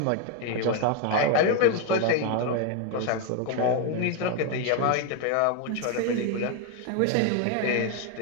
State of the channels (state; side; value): different; both; correlation 0.01